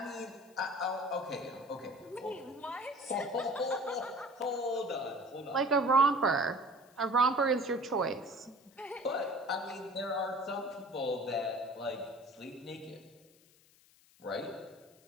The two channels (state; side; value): noise; left; hiss, 29 dB below the sound